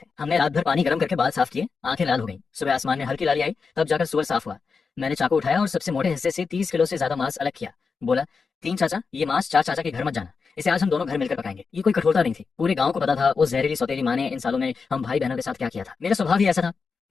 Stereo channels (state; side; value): quieter; right; 5.0 dB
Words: हमने रात भर पानी गर्म करके बाल साफ किए, आंखें लाल हो गई। सुबह आसमान में हल्की लाली आई, तब जाकर सुअर साफ हुआ। मैंने चाकू उठाया और सबसे मोटे हिस्से से 30 किलो से ज्यादा मांस अलग किया। बोला, तीन चाचा, ये मांस चार चाचा के घर मत जाना, इसे आज हम दोनों घर मिलकर पकाएंगे। ये कोई कठोरता नहीं थी, पूरे गांव को पता था उस जहरीली सौतेली माँ ने इन सालों में हम भाई बहनों के साथ क्या किया था। मेरा स्वभाव ही ऐसा था,